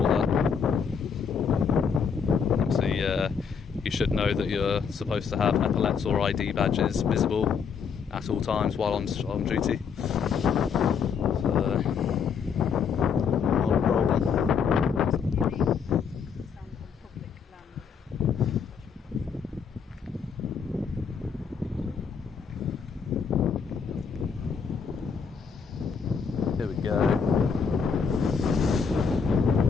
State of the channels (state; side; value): quieter; right; 6.3 dB